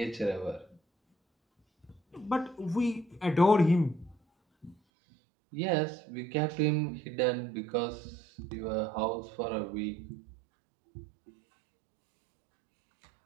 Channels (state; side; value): drops out; left; at 4.8 s